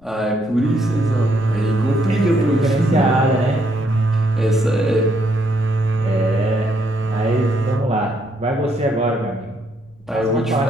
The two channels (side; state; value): left; noise; rumble, 29 dB below the sound